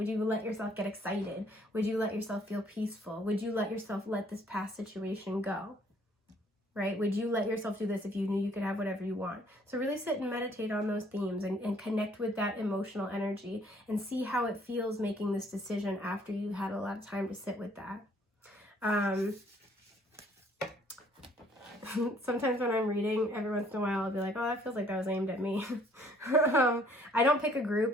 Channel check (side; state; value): both; normal; correlation 0.61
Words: you let yourself get excited? Would you let yourself feel peaceful? Would you let yourself let this past situation go? Right? Would you let yourself do this if you knew you could have whatever you want? So really sit and meditate on those themes, and connect with that emotional energy, and see how it feels making this decision after you had a lot of time to sit with that. Sometimes when I'm reading, every once in a while, I'll be like, oh, that feels like that was aimed at me. I don't pick a